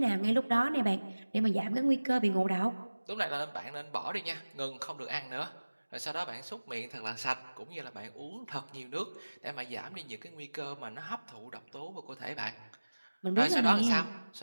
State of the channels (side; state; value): both; inverted; correlation -1.00